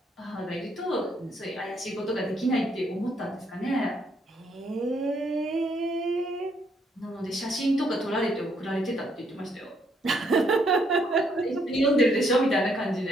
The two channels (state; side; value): normal; both; correlation 0.72